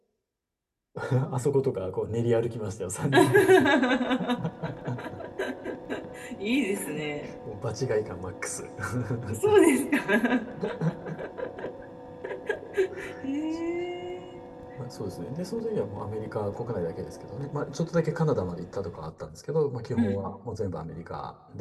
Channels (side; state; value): both; identical; correlation 1.00